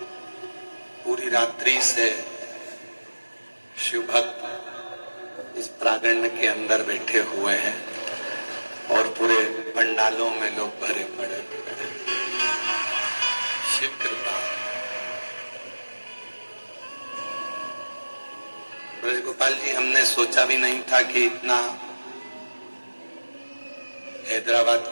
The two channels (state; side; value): inverted; both; correlation -1.00